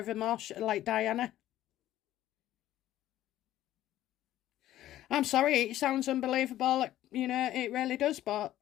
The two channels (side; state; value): right; quieter; 13.6 dB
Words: like Diana. I'm sorry, it sounds unbelievable, you know, it really does, but